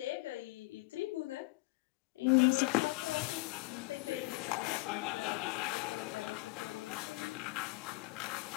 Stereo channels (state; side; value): quieter; right; 23.0 dB